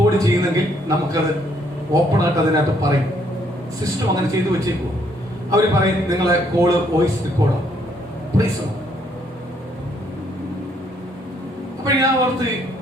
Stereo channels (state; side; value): normal; both; correlation 0.69